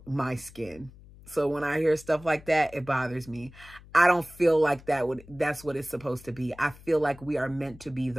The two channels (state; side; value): noise; left; hum, 21 dB below the sound